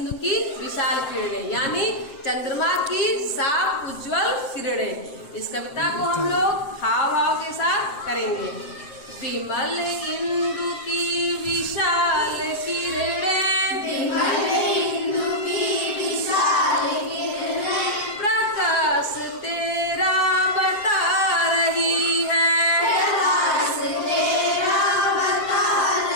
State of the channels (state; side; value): late; right; 7.7 ms